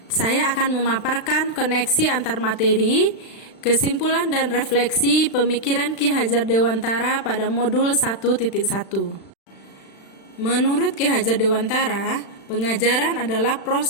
Saya akan memaparkan koneksi antar materi, kesimpulan dan refleksi pemikiran Ki Hajar Dewantara pada modul 1.1. Menurut Ki Hajar Dewantara, pengajaran adalah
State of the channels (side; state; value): right; late; 36 ms